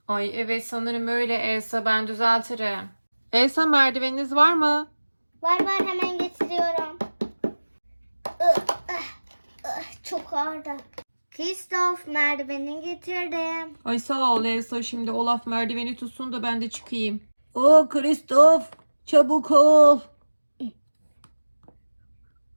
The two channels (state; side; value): inverted; both; correlation -1.00